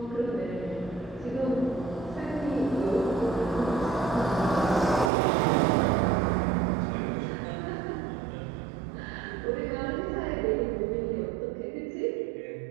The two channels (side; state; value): left; drops out; at 5.1 s